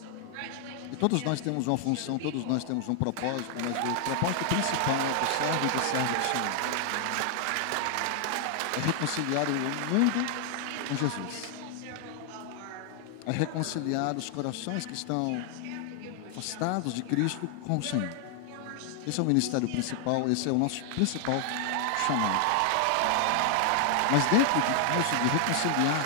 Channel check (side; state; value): both; different; correlation 0.00